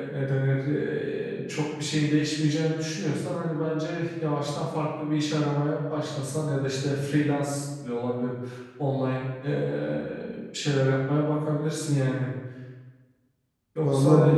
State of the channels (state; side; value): identical; both; correlation 1.00